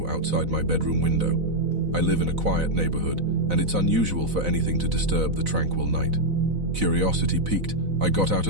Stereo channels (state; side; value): late; left; 4.0 ms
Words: outside my bedroom window. I live in a quiet neighborhood, and it's unusual for anything to disturb the tranquil night. Curiosity piqued, I got out